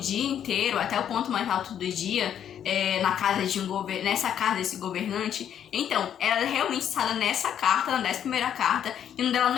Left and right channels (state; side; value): quieter; right; 9.4 dB